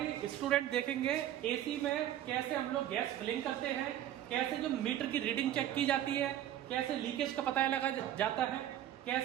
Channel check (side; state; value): left; quieter; 12.0 dB